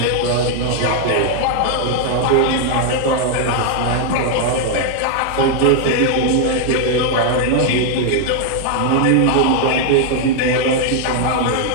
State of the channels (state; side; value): different; both; correlation 0.00